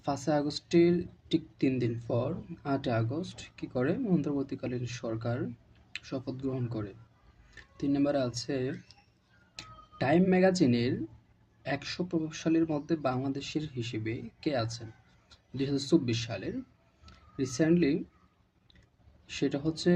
5 আগস্টের ঠিক 3 দিন পর 8 আগস্ট কি করে অন্তর্বর্তীকালীন সরকার শপথ গ্রহণ করে। 3 নম্বরে আছে টাইম ম্যাগাজিনের 100 প্রভাবশালীর মধ্যে বাংলাদেশের হিসেবে কে আছেন 2024 সালের? রিসেন্টলি সেটা হচ্ছে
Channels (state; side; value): identical; both; correlation 1.00